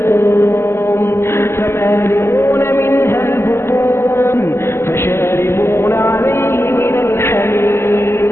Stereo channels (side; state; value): right; late; 0.12 ms